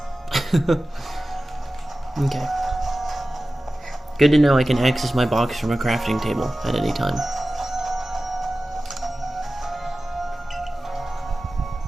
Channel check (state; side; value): normal; both; correlation 0.96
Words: Okay. Good to know I can access my box from a crafting table at any time.